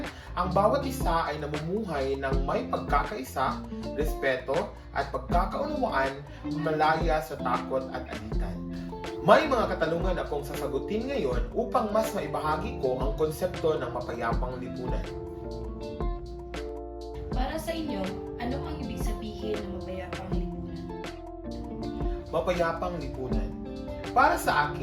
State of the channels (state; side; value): identical; both; correlation 1.00